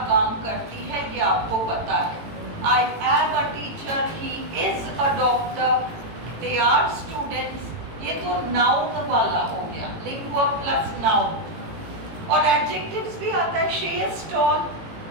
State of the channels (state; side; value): late; left; 18 ms